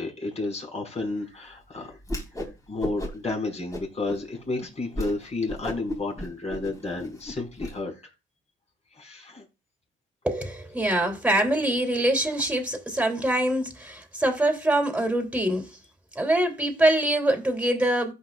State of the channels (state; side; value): normal; both; correlation 0.73